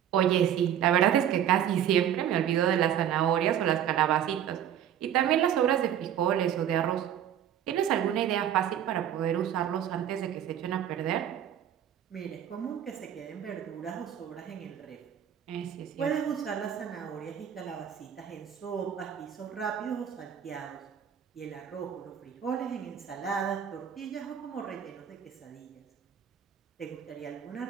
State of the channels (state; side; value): quieter; left; 9.9 dB